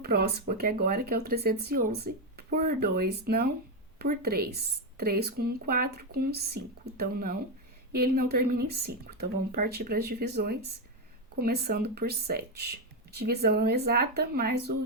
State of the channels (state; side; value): normal; both; correlation 0.07